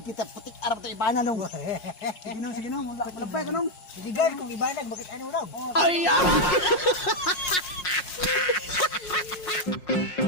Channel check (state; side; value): late; right; 5.6 ms